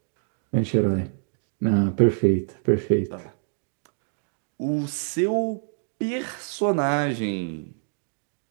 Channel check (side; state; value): left; silent; digital silence